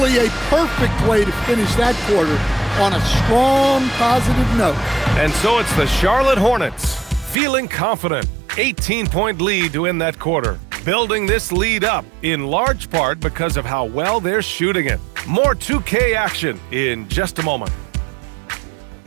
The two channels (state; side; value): drops out; left; at 7.4 s